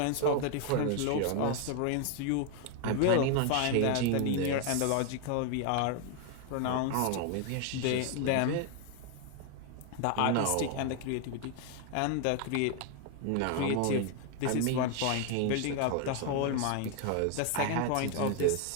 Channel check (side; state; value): both; different; correlation 0.01